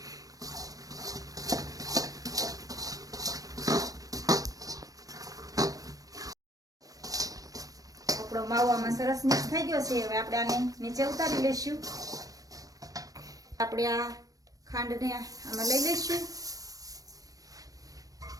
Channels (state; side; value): late; left; 0.17 ms